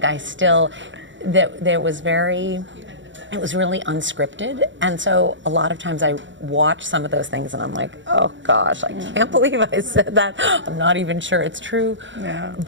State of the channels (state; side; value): late; left; 0.54 ms